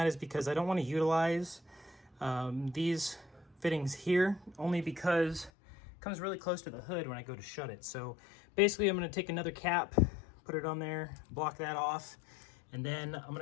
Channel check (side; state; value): right; drops out; at 5.5 s